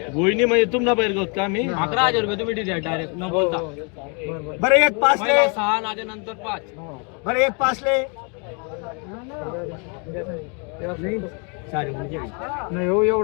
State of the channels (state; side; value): quieter; right; 35.8 dB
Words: गोईनी म्हणजे तुमला बैल गोत का मी 11,000 रुपये तुम्ही दिले डायरेक्ट न बोलता. बरं 1.5 ले 6 नाजे नंतर 5 बरं 1.5 ले नाही हो